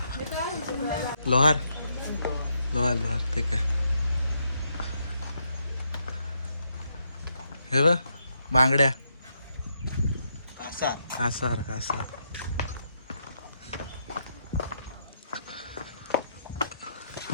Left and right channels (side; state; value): both; inverted; correlation -0.78